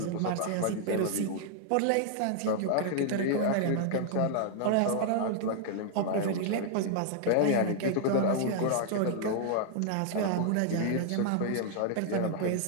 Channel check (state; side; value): different; both; correlation -0.01